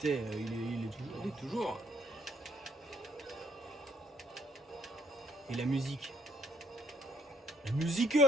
il est toujours. Il est toujours. Et la musique. La musique.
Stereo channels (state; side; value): normal; both; correlation 0.68